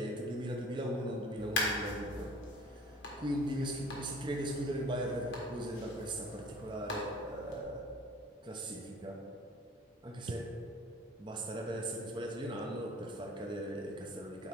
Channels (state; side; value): normal; both; correlation 0.47